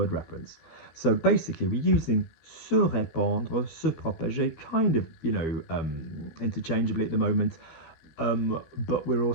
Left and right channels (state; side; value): late; right; 13 ms